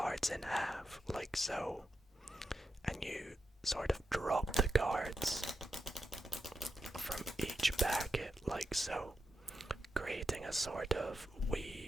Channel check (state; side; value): normal; both; correlation 0.86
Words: in half, like so, and you sort of drop the cards from each packet, like so, creating a sort of